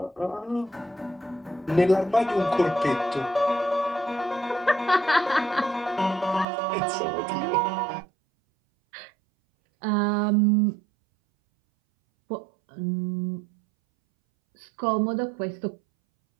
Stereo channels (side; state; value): left; drops out; at 6.5 s